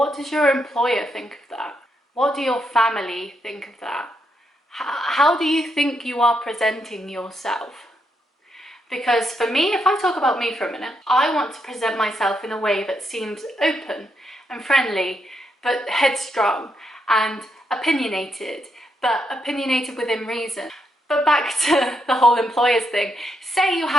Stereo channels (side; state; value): both; normal; correlation 0.80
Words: does your employer think of that? What do your family think of that? How do you think you are presenting yourself? Because for me, if I talk about me for a minute, I want to present myself in a way that seems open and friendly, but headstrong and opinionated, but opinionated within reason. But back to the whole employers thing. Say you